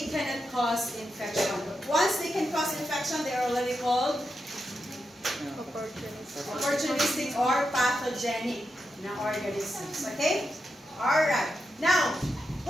cannot cause infection. Once they can cause infection, they are already called opportunistic or pathogenic na organisms. Okay? Alright. Now,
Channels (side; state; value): both; normal; correlation 0.86